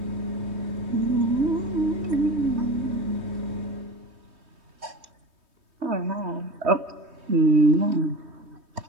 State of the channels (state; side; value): late; left; 3.2 ms